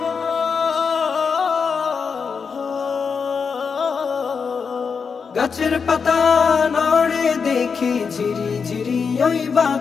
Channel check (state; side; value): quieter; right; 5.7 dB